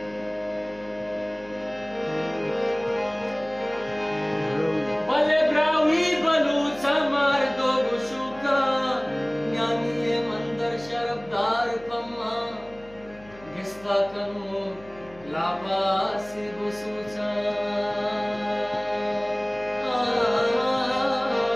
Bale brawi balucha mar do gushuka Nyaniye mandar sharabdar pamma Gista kanu labasi gusucha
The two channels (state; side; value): noise; left; hum, 23 dB below the sound